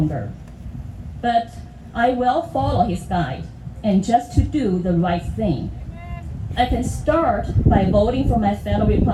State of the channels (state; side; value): identical; both; correlation 1.00